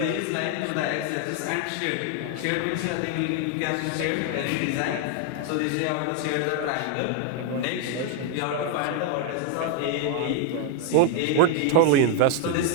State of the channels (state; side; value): different; both; correlation 0.01